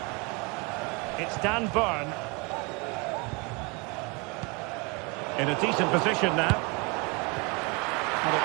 It's Dan Burn. In a decent position now. But it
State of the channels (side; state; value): left; quieter; 28.7 dB